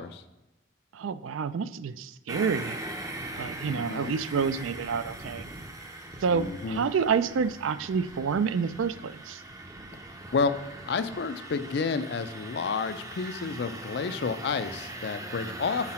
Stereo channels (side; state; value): both; normal; correlation 0.00